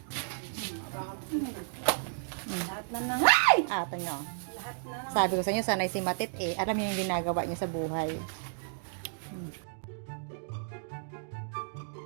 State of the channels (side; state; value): left; silent; digital silence